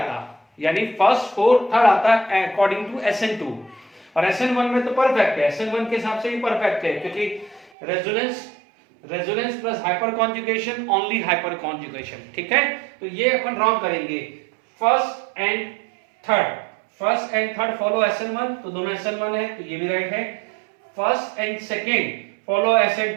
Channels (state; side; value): drops out; left; at 7.7 s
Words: यानी फर्स्ट फोर्थ थर्ड आता अकॉर्डिंग टू SN2, और SN1 में तो परफेक्ट है, SN1 के हिसाब से ही परफेक्ट है, क्योंकि resonance plus hyper conjugation, only hyper conjugation, ठीक है, तो ये अपन रॉन्ग करेंगे। First and third follow SN1, तो दोनों SN1 है, तो ये भी राइट है। First and second follow